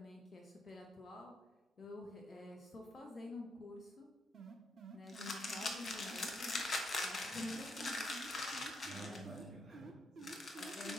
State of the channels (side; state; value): both; normal; correlation 0.78